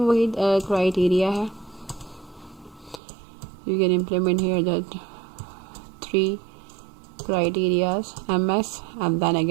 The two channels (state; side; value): drops out; left; at 3.0 s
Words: वही क्राइटेरिया है। You can implement here that 3 criterias, MS and then